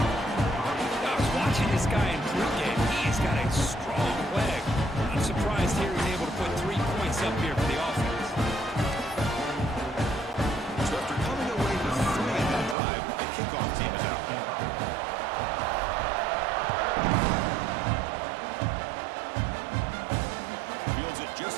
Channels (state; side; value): drops out; left; at 12.8 s